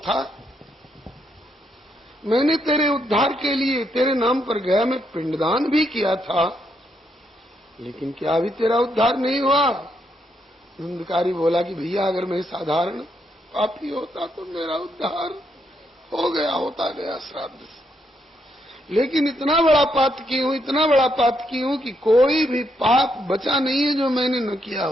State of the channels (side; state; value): both; normal; correlation 0.77